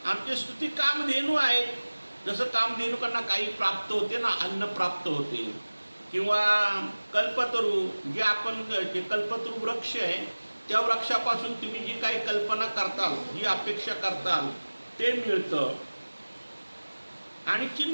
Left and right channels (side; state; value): both; inverted; correlation -1.00